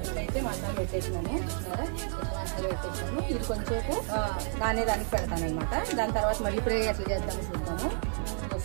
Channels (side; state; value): left; silent; 57 dB below the other